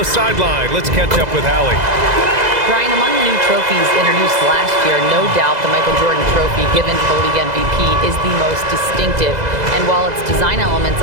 sideline, let's catch up with Allie. Brian, among the new trophies introduced last year, no doubt the Michael Jordan Trophy given to the league MVP is the most distinctive. And while its design elements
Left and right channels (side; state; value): left; late; 2.0 ms